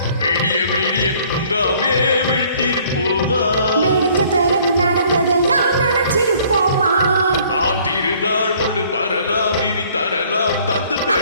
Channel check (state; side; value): inverted; both; correlation -0.58